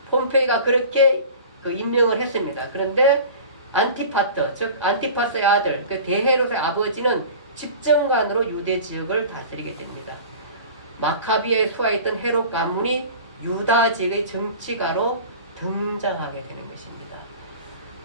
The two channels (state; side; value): inverted; both; correlation -0.39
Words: 폼페이가 그렇게 임명을 했습니다. 그런데 안티파트, 즉 안티파스의 아들, 그 대헤롯의 아버지는 집정관으로 유대 지역을 다스리게 됩니다. 마카비아에 수하였던 헤롯 가문이 유다 지역의 정치가로 등장하게 되는 것입니다.